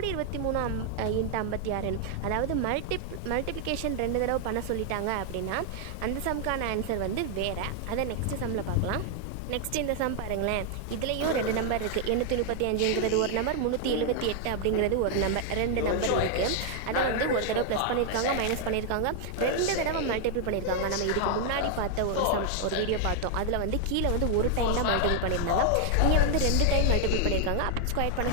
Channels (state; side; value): different; both; correlation 0.00